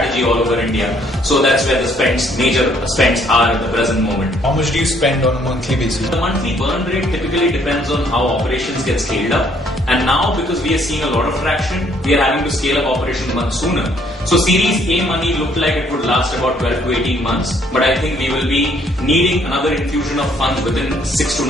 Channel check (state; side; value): normal; both; correlation 0.65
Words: all over India. So that's where the major spends are at the present moment. How much do you spend on a monthly basis? The monthly burn rate typically depends on how operations get scaled up. And now, because we are seeing a lot of traction, we are having to scale up operations much sooner. So Series A money looked like it would last about 12 to 18 months. But I think we will be needing another infusion of funds within 6 to